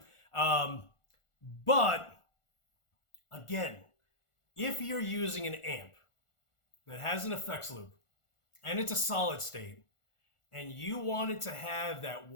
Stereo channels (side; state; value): right; late; 1.4 ms